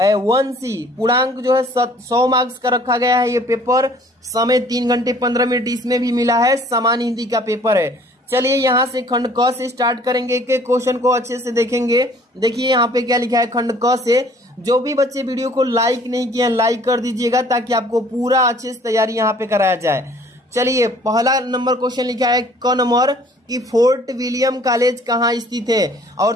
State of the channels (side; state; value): both; normal; correlation 0.55